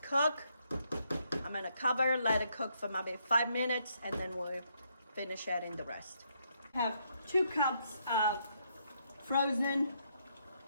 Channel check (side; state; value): both; inverted; correlation -0.75